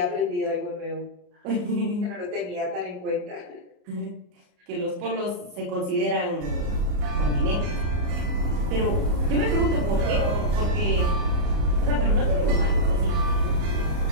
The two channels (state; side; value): late; left; 33 ms